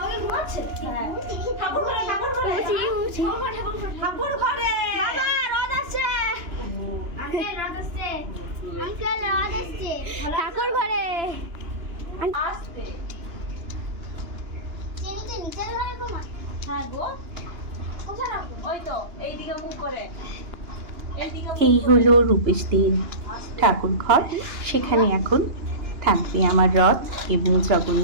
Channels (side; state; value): left; late; 2.9 ms